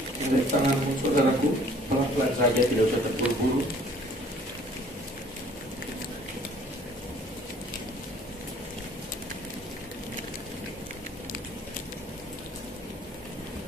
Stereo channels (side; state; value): both; normal; correlation 0.55